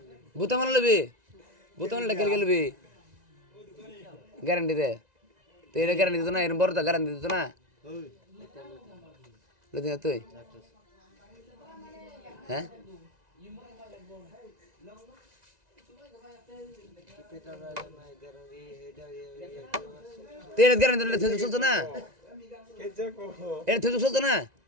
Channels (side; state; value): left; late; 1.9 ms